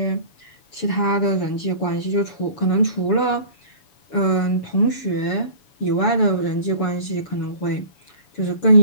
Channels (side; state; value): right; late; 7.0 ms